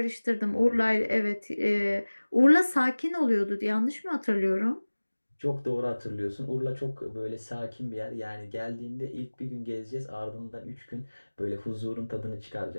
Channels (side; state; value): both; inverted; correlation -1.00